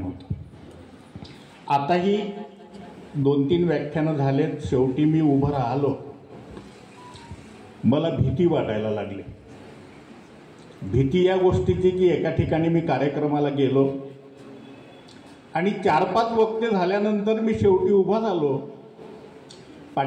होतं. आताही 2-3 व्याख्यानं झालेत. शेवटी मी उभं राहिलो. मला भीती वाटायला लागली. भीती या गोष्टीची की एका ठिकाणी मी कार्यक्रमाला गेलो आणि 4-5 वक्ते झाल्यानंतर मी शेवटी उभा झालो.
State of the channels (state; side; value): identical; both; correlation 1.00